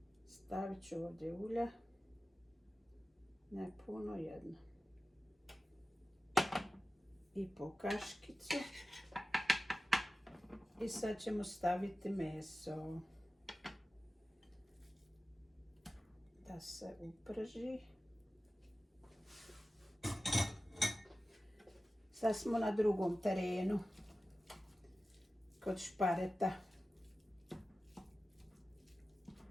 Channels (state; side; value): normal; both; correlation 0.95